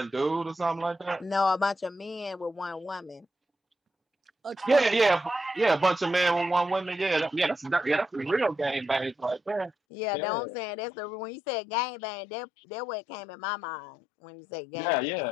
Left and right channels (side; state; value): right; drops out; at 9.7 s